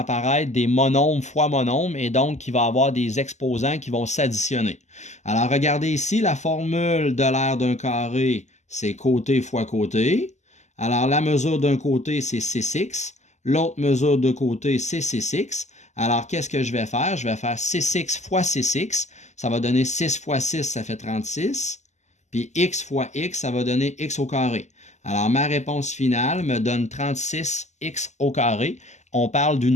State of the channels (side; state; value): right; late; 0.33 ms